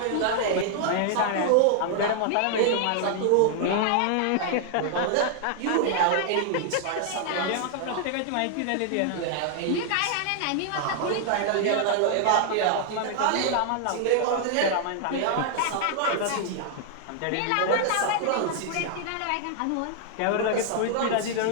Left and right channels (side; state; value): both; different; correlation 0.00